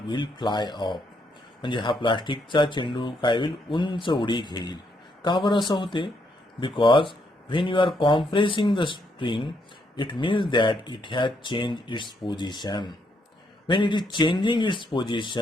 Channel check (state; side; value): normal; both; correlation 0.75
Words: will fly of. म्हणजे हा प्लास्टिकचा चेंडू काय होईल? उंच उडी घेईल. का बरं असं होते? Because when you are compressing the spring, it means that it has change its position. When it is changing its